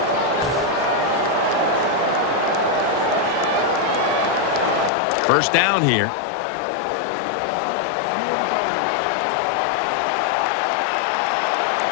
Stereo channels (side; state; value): right; drops out; at 4.9 s